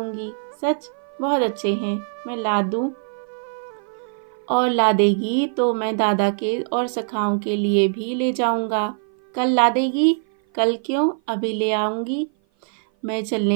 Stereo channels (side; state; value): left; silent; 56 dB below the other